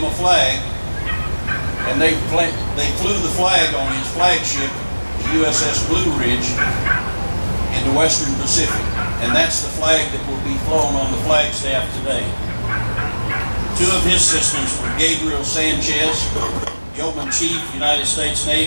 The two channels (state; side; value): inverted; both; correlation -1.00